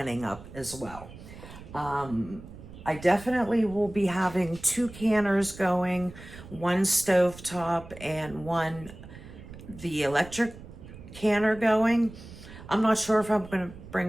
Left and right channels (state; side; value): noise; right; rumble, 16 dB below the sound